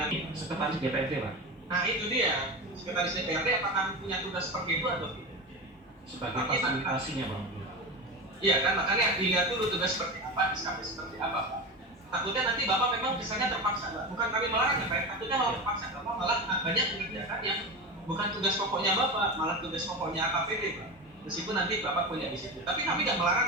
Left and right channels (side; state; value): both; normal; correlation 0.24